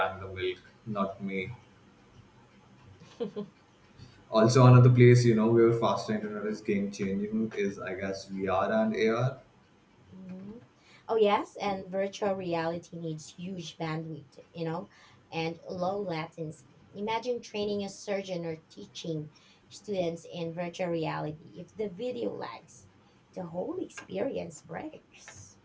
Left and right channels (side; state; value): both; identical; correlation 1.00